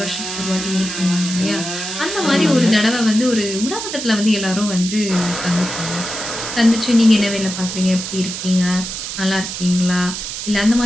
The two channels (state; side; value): noise; right; hiss, 6 dB below the sound